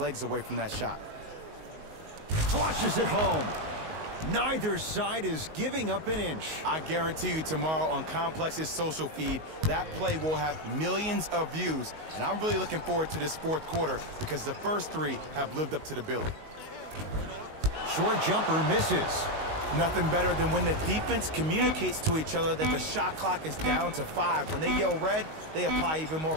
away from that shot. Flushes it home. Neither side is giving up an inch. I guarantee you tomorrow on Complex's social feed, that play will have millions of views. And I'm really looking forward to this fourth quarter because the first 3 have lived up to the billing. Short jumper misses. Nothing better than when the defense communicates to each other that the shot clock is down to 5. When they yell red, they apply even more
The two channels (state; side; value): late; left; 19 ms